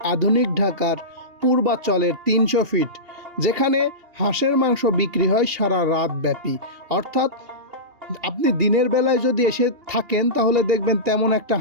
আধুনিক ঢাকার পূর্বাচলের 300 ফিট, যেখানে হাঁসের মাংস বিক্রি হয় সারা রাত ব্যাপী। অর্থাৎ আপনি দিনের বেলায় যদি এসে থাকেন তাহলে দেখবেন তেমন একটা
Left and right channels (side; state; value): left; late; 2.8 ms